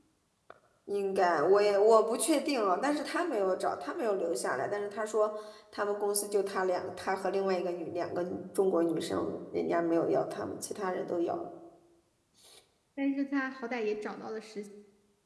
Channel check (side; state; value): both; identical; correlation 1.00